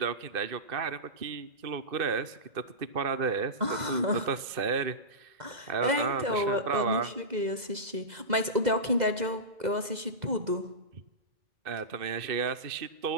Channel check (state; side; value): late; left; 2.0 ms